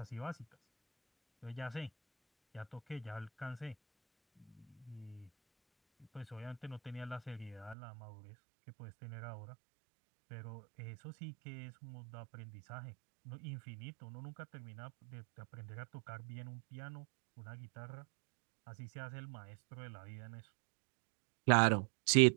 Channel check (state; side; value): drops out; left; at 7.8 s